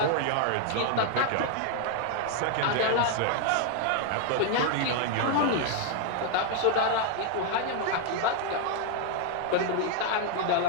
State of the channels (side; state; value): both; different; correlation 0.00